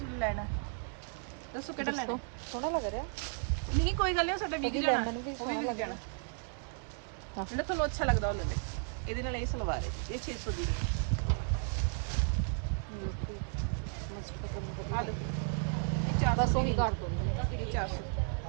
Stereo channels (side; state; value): left; silent; 55 dB below the other